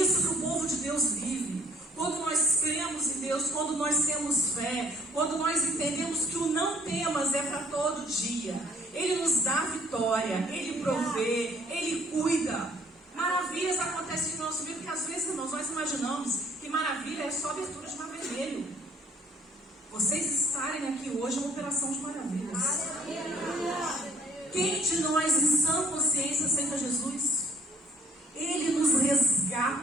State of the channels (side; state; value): both; normal; correlation 0.59